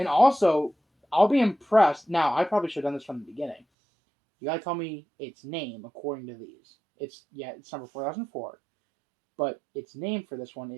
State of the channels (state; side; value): drops out; left; at 3.6 s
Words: also, I'll be impressed. Now, I probably should have done this from the beginning. You gotta tell me its name according to these. It's number 4004. But its name for this one